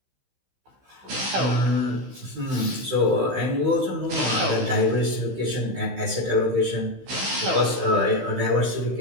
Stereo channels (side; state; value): left; late; 16 ms